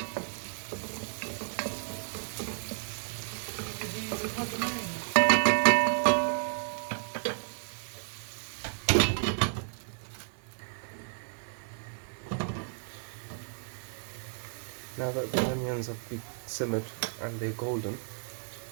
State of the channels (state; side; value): silent; left; digital silence